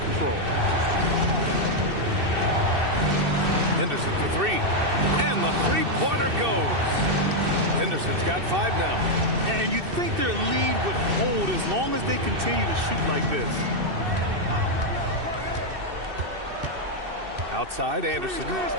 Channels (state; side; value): late; left; 2.6 ms